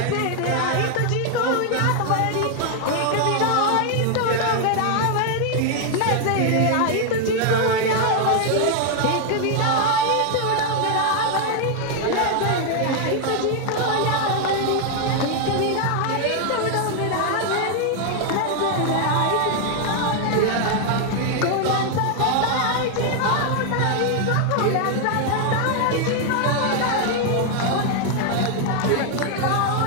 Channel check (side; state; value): both; different; correlation 0.00